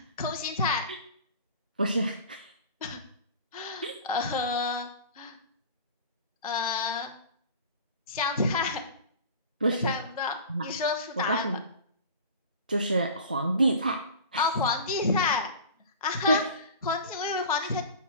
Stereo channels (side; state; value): both; inverted; correlation -0.37